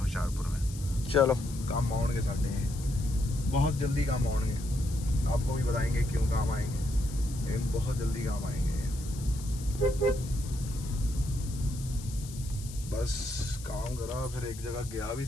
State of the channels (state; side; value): noise; left; hiss, 15 dB below the sound